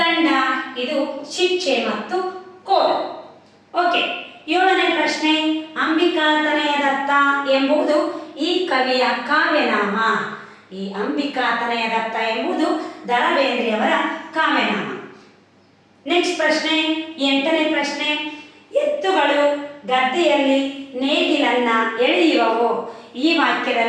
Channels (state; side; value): identical; both; correlation 1.00